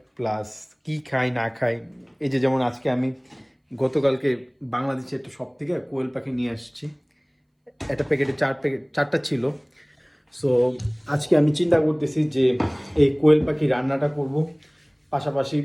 প্লাস কি খাই না খাই। এই যে যেমন আজকে আমি গতকালকে বাংলাদেশে একটা শপ থেকে কোয়েল পাখি নিয়ে আসছি। একটা প্যাকেটে 4টা ছিল। সো আজকে আমি চিন্তা করতেছি যে এই কোয়েল পাখি রান্নাটা করব, পাশাপাশি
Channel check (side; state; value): both; identical; correlation 1.00